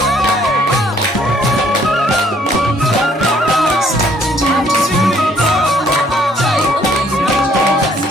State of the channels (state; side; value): normal; both; correlation 0.63